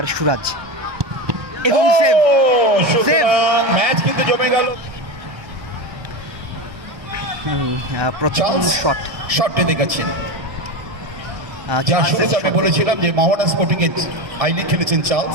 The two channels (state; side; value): late; left; 1.2 ms